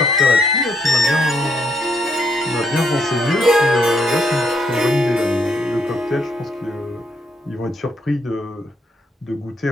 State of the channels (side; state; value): both; normal; correlation 0.74